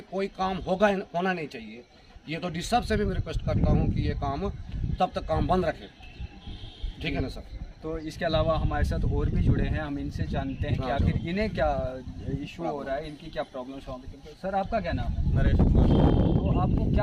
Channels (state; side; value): identical; both; correlation 1.00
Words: कोई काम होना नहीं चाहिए। ये तो डी साहब से भी मैं रिक्वेस्ट करता हूँ कि ये काम तब तक काम बंद रखें, ठीक है ना सर। तो इसके अलावा हमारे साथ और भी जुड़े हैं, हम इनसे जानते हैं कि आखिर इन्हें क्या इशू हो रहा है, इनकी क्या प्रॉब्लम्स हो रही है। सर आपका क्या नाम है? नरेश कुमार। तो आपको